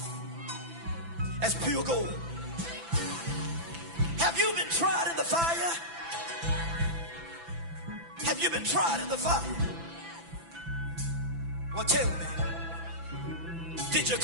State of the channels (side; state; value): left; late; 6.0 ms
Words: as pure gold. Have you been tried in the fire? Have you been tried in the fire? Well, tell me, did you